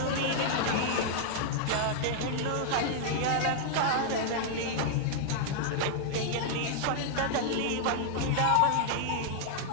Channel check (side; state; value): both; different; correlation -0.01